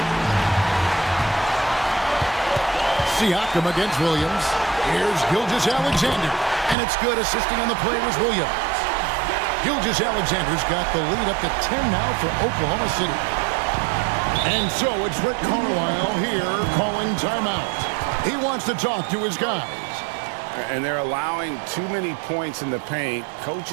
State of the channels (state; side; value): drops out; left; at 6.8 s